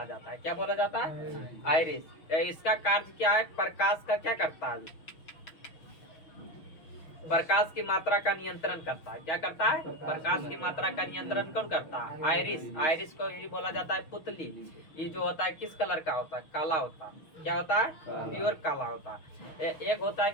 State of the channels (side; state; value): right; late; 6.3 ms